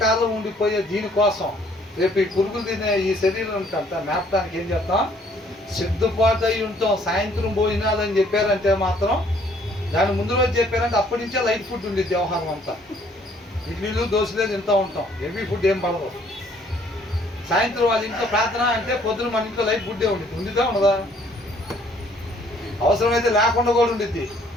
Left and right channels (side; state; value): both; normal; correlation 0.62